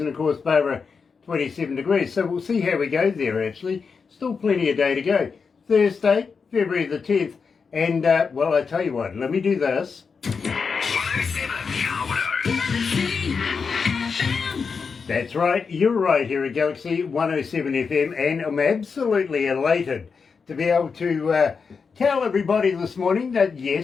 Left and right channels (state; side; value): quieter; right; 5.4 dB